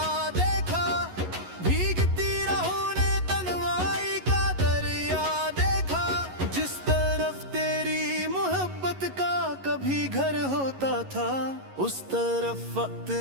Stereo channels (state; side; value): late; left; 11 ms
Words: देखा, भीगती राहों ने तन्हाई का दरिया देखा। जिस तरफ तेरी मोहब्बत का कभी घर होता था, उस तरफ वक्त